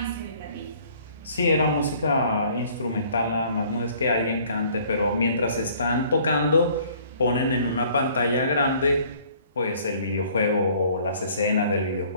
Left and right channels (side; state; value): both; inverted; correlation -0.57